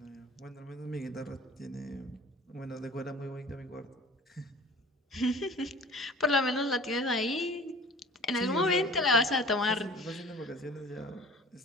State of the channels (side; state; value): both; normal; correlation 0.45